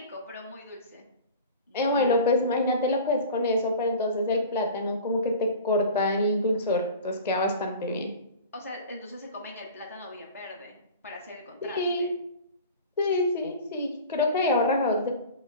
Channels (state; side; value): inverted; both; correlation -0.38